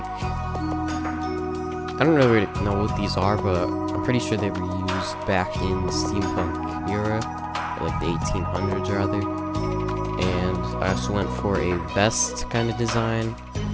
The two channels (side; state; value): both; identical; correlation 1.00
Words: I don't really know what these are, but I'm pretty sure they were used back in the steampunk era, like the 1800s rather. And I also went for a vest kind of design